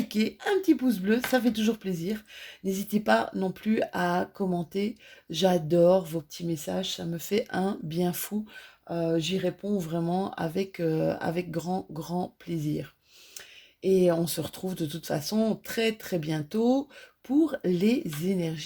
un petit pouce bleu, ça fait toujours plaisir. N'hésitez pas non plus à commenter, j'adore vos petits messages, ça me fait un bien fou. J'y réponds vraiment avec grand plaisir. Et on se retrouve de toute façon très très bientôt pour les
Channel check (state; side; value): identical; both; correlation 1.00